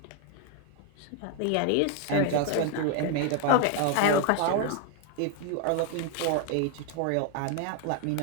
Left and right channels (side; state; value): both; different; correlation 0.01